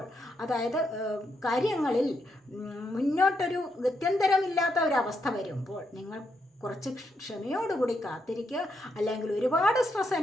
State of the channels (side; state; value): both; normal; correlation 0.80